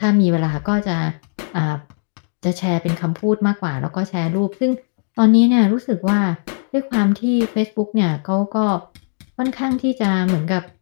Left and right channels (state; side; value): silent; right; digital silence